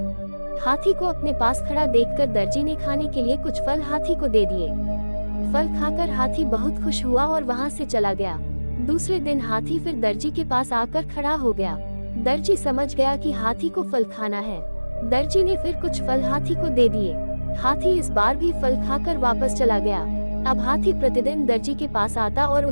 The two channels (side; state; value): both; inverted; correlation -1.00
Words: हाथी को अपने पास खड़ा देखकर दर्जी ने खाने के लिए कुछ फल हाथी को दे दिए। फल खाकर हाथी बहुत खुश हुआ और वहां से चला गया। दूसरे दिन हाथी फिर दर्जी के पास आकर खड़ा हो गया। दर्जी समझ गया कि हाथी को फल खाना है। दर्जी ने फिर कुछ फल हाथी को दे दिए। हाथी इस बार भी फल खाकर वापस चला गया। अब हाथी प्रतिदिन दर्जी के पास आता और